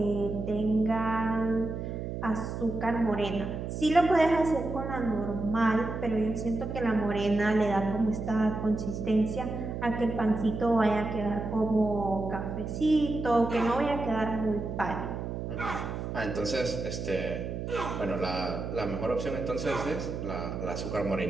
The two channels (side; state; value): right; noise; hum, 5 dB below the sound